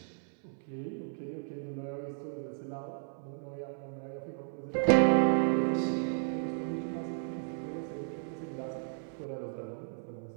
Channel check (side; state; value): left; silent; 55 dB below the other